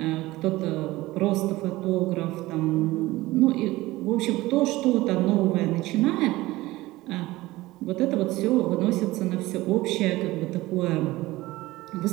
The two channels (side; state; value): left; quieter; 18.7 dB